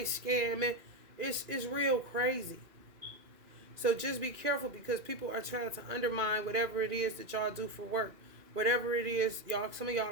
scamming. It's real crazy. So just be careful because people are trying to undermine whatever it is that y'all do for work. Whatever it is, y'all, some of y'all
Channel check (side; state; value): left; late; 2.4 ms